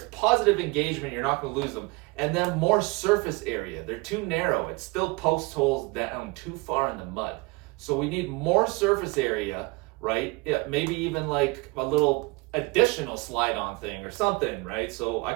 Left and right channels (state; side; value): quieter; left; 26.1 dB